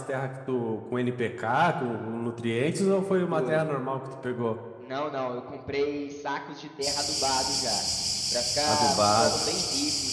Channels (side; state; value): both; identical; correlation 1.00